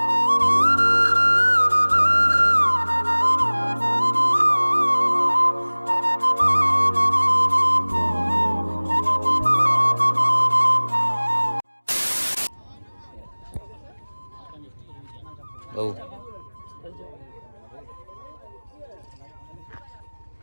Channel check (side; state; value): both; inverted; correlation -1.00